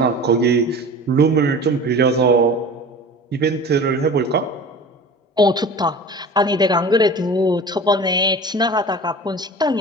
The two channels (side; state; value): both; normal; correlation 0.38